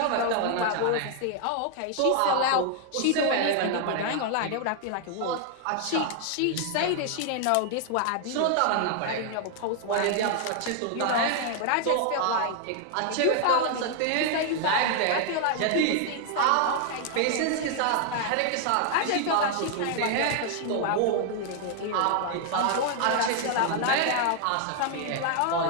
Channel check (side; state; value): both; different; correlation 0.00